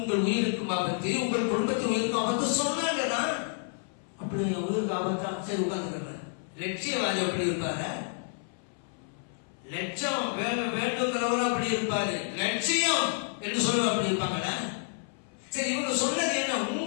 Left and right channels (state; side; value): silent; right; 58 dB below the other